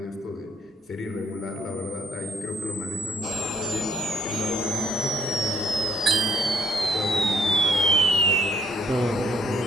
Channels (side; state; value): both; normal; correlation 0.64